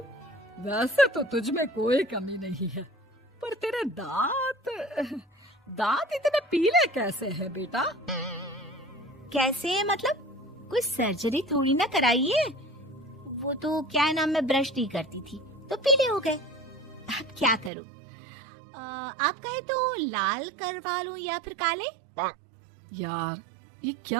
वैसे तो तुझ में कोई कमी नहीं है, पर तेरे दांत इतने पीले कैसे हैं बेटा? कैसे मतलब? कोई सर्जरी थोड़ी ना कराई है। वो तो क्या नाम, मैं ब्रश नहीं करती थी तो पीले हो गए। अब क्या करूं? आप कहें तो लाल करवा लूं या फिर काले? यार ये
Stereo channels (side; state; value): left; drops out; at 17.7 s